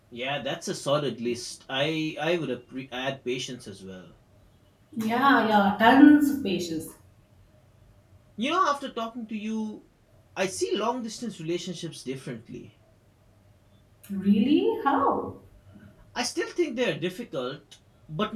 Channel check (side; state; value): both; identical; correlation 1.00